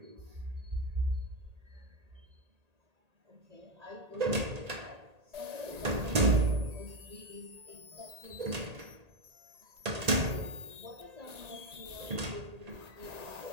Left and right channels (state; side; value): late; left; 1.8 ms